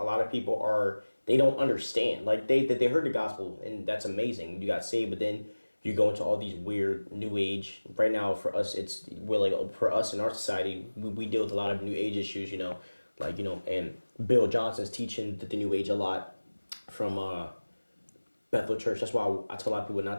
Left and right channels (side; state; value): both; inverted; correlation -1.00